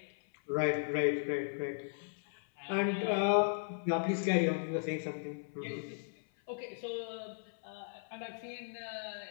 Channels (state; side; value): silent; right; 53 dB below the other